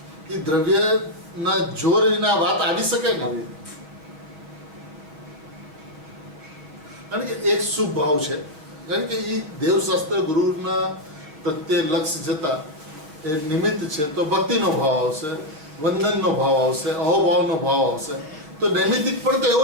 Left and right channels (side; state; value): left; late; 6.4 ms